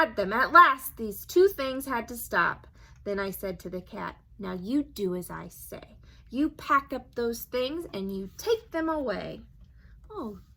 them. At last, these two things had to stop. Then I said to the cat, now you do as I say. You pack up those things and you take them away. Oh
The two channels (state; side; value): identical; both; correlation 1.00